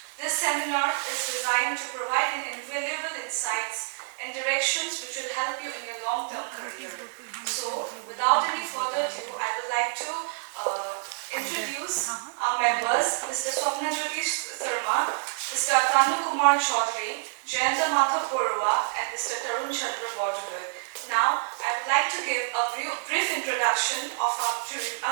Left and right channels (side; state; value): left; silent; digital silence